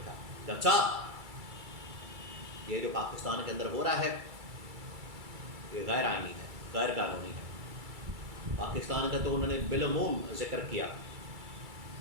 جج صاحب، یہ جو پاکستان کے اندر ہو رہا ہے، یہ غیر آئینی ہے، غیر قانونی ہے۔ پاکستان کا تو انہوں نے بالعموم ذکر کیا،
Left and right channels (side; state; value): left; late; 2.3 ms